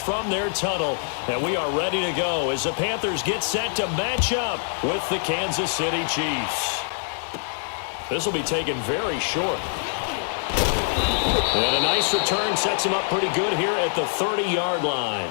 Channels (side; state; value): right; silent; 62 dB below the other